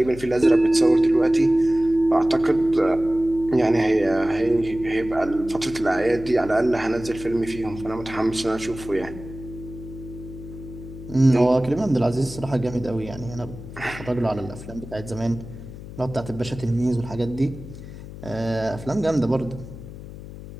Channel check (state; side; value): noise; left; hum, 13 dB below the sound